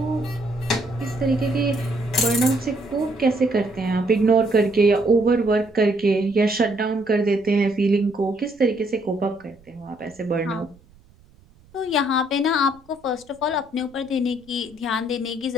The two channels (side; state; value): right; noise; rumble, 28 dB below the sound